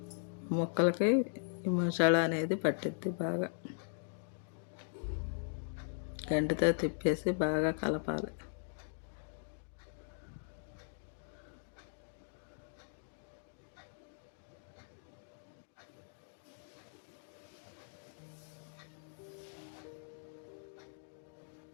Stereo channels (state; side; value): silent; right; digital silence